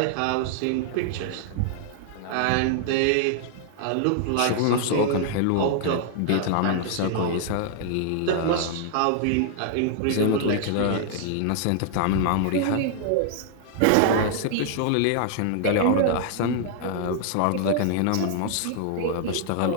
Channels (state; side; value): different; both; correlation 0.00